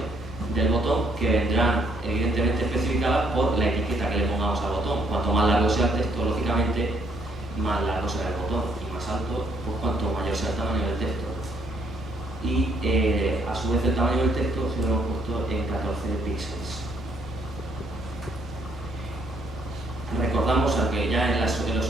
del botón, que vendrán evidentemente especificadas por la etiqueta que le pongamos al botón. Cuanto más largo sea el texto, lógicamente, más largo será el botón, y más alto, pues cuanto mayor sea el tamaño del texto. Y a su vez el tamaño del texto se lo hemos puesto en 14 píxeles. Recordamos, aunque ya en los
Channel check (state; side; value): normal; both; correlation 0.69